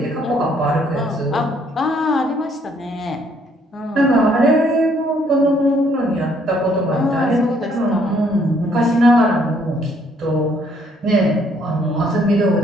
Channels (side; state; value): both; normal; correlation 0.66